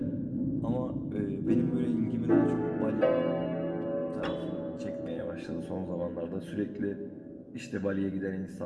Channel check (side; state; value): both; identical; correlation 1.00